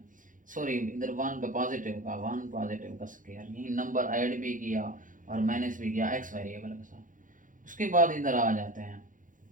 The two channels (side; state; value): left; late; 0.38 ms